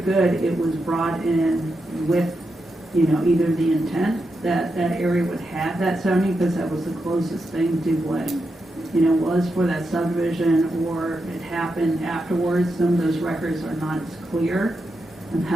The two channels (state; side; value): normal; both; correlation 0.86